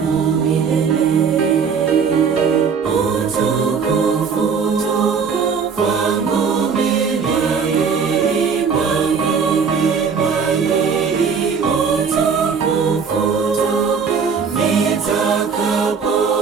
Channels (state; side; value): quieter; left; 5.9 dB